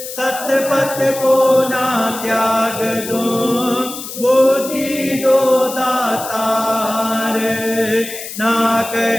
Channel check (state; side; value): noise; left; hiss, 10 dB below the sound